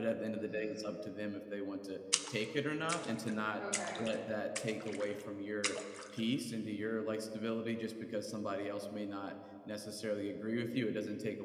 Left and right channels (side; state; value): both; identical; correlation 1.00